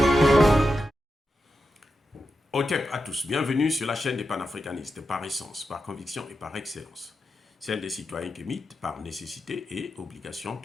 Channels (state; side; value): normal; both; correlation 0.88